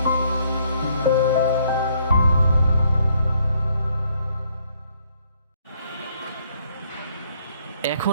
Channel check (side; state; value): both; inverted; correlation -0.68